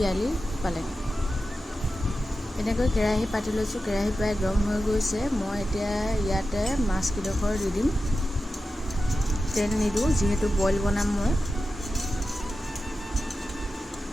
পালেং। এনেকৈ কেৰাহী পাতি লৈছোঁ, কেৰাহী প্ৰায় গৰম হৈ গৈছে। মই এতিয়া ইয়াতে মাছকেইডোখৰ দি দিম। তেল নিদিওঁ যিহেতু বইল বনাম মই।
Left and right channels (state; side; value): normal; both; correlation 0.92